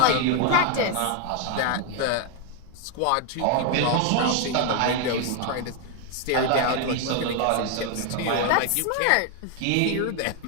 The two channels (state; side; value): different; both; correlation 0.01